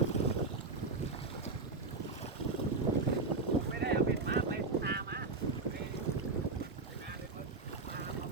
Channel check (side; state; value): left; quieter; 4.0 dB